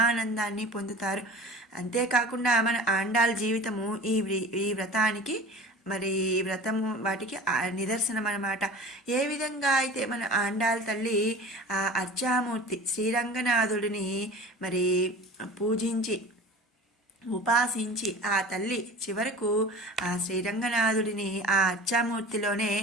పొందుతారు. అంతేకాకుండా మన ఆండాల్ జీవితము ఈ వ్రతానికి మరి వ్రతము వాటికి నిదర్శనం అన్నమాట. ఏ విధంగా అయితే మన ఆండాల్ తల్లి ఆ అర్చామూర్తి శ్రీరంగనాథుడిని మరి పూజించి ఉపాసించి ఆ తల్లి చివరకు ఆ శ్రీరంగనాథుడిని ఆ అర్చామూర్తిలోనే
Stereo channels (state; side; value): normal; both; correlation 0.39